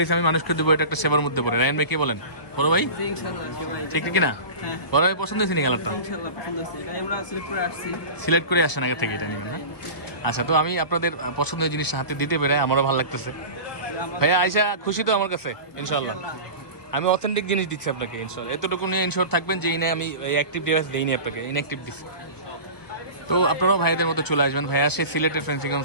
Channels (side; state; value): right; late; 1.2 ms